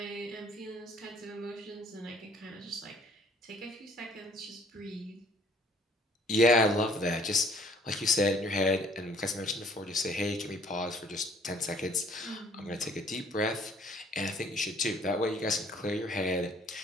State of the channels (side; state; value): both; normal; correlation 0.58